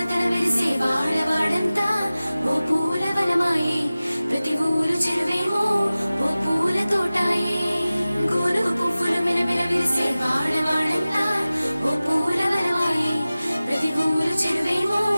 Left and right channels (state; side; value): inverted; both; correlation -0.97